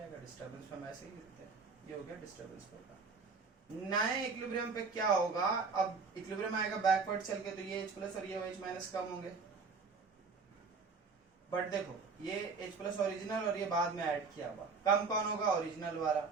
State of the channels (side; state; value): left; quieter; 4.7 dB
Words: डिस्टर्बेंस में वैसे ही गिरते हैं, ये हो गया डिस्टर्बेंस का। नए इक्विलिब्रियम पे क्या होगा? अब इक्विलिब्रियम आएगा बैकवर्ड चल के, तो ये H प्लस और ये OH माइनस कम होंगे, बट देखो ये H प्लस ओरिजिनल और ये बाद में ऐड किया हुआ, कम कौन होगा? ओरिजिनल वाला,